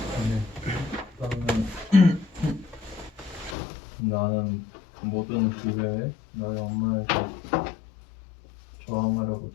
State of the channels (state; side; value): drops out; right; at 3.6 s